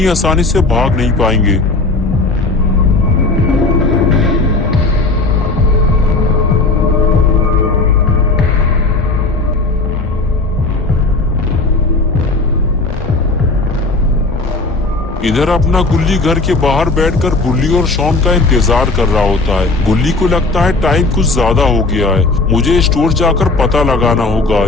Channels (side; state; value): right; quieter; 3.4 dB